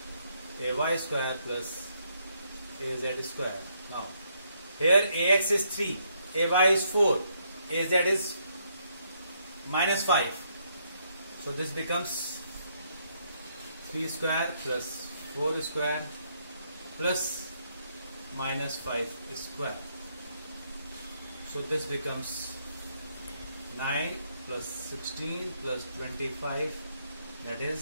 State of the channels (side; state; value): both; inverted; correlation -0.73